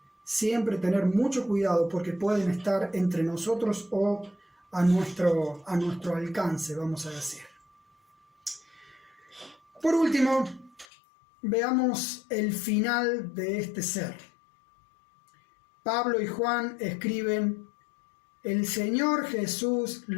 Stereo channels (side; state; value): right; drops out; at 10.9 s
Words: siempre tener mucho cuidado porque pueden estar entre nosotros o a nuestro alcance, vamos a decir. Por último, veamos el final de este ser. Pablo y Juan escriben: el Señor Jesús